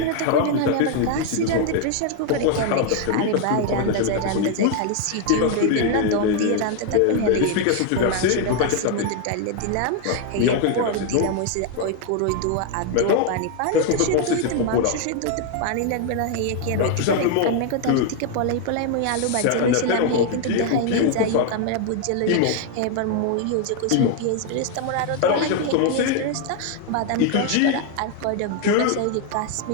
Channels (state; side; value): different; both; correlation 0.01